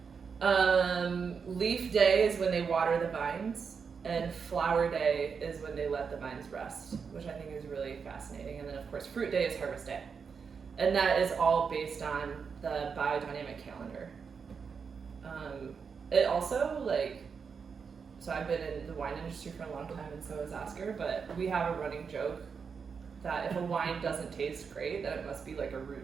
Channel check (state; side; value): quieter; left; 5.9 dB